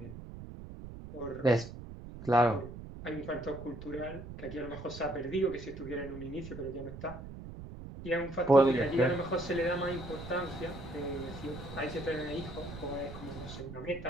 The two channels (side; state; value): right; noise; rumble, 12 dB below the sound